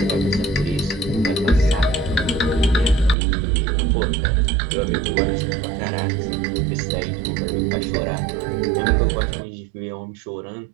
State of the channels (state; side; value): drops out; left; at 3.2 s